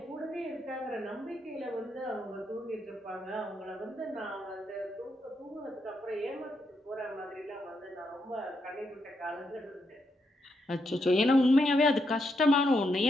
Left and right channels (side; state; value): both; normal; correlation 0.80